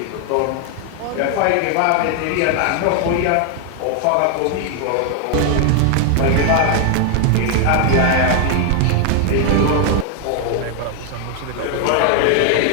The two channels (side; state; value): both; different; correlation 0.00